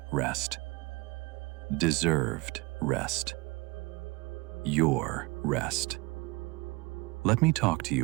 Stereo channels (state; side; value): quieter; left; 25.1 dB